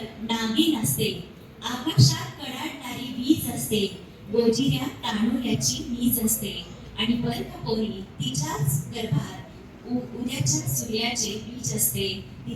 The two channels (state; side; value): identical; both; correlation 1.00